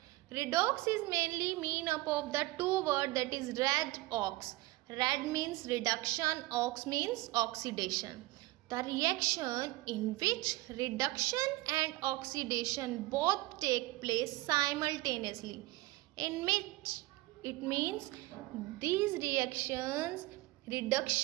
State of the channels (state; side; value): quieter; left; 20.0 dB